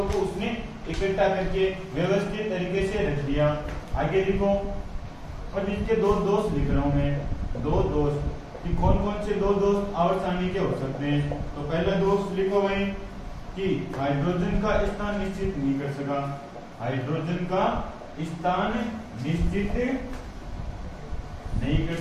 को उसने इकट्ठा करके व्यवस्थित तरीके से रख दिया। आगे लिखो, और इसके दो दोष लिख रहा हूं मैं, दो दोष कि कौन कौन से दो दोष आवर्त सारणी के हो सकते हैं। तो पहला दोष लिखो भाई कि हाइड्रोजन का स्थान निश्चित नहीं कर सका, हाइड्रोजन का स्थान निश्चित नहीं कर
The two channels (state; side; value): identical; both; correlation 1.00